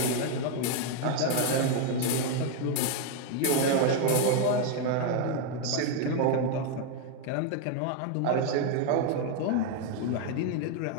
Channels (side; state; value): both; different; correlation 0.01